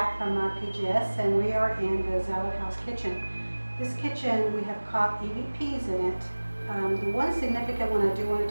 from PGS, and we are in the Zalud house kitchen. This kitchen, we have caught EVPs in it. The one significant one I do want to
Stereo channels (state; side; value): inverted; both; correlation -1.00